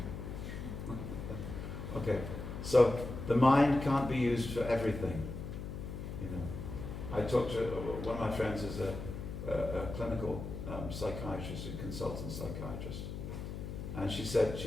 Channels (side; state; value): left; noise; hum, 7 dB below the sound